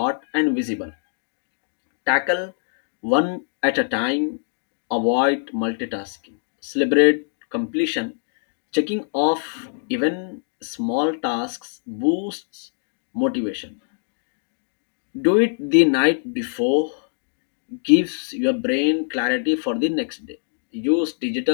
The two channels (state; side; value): silent; right; digital silence